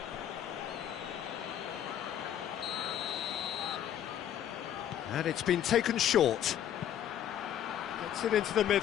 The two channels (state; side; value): quieter; right; 10.4 dB